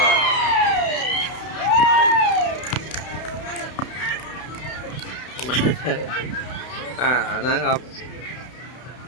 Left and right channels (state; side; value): late; right; 32 ms